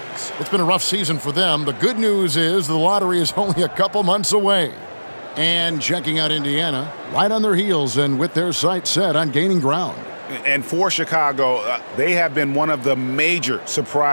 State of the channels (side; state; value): both; inverted; correlation -1.00